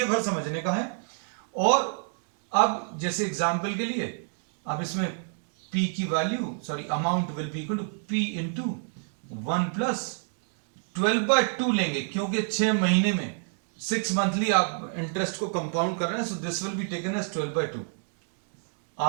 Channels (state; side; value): silent; left; 58 dB below the other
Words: भर समझने का है। और अब जैसे एग्जाम्पल के लिए अब इसमें p की value sorry amount will be equal to p into 1 plus 12/2 लेंगे, क्योंकि 6 महीने में 6 मंथली आप इंटरेस्ट को कंपाउंड कर रहे हैं, so this will be taken as 12/2,